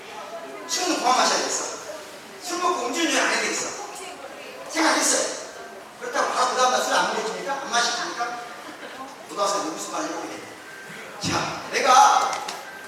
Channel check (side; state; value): both; identical; correlation 1.00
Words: 술은 그만 마셔야 되겠어. 술 먹고 음주운전 안 해야 되겠어. 생각했어요. 그렇다고 바로 그 다음날 술 안 먹어줍니까? 안 마시십니까? 고등학생 무슨 말을 해보게 되네. 자, 내가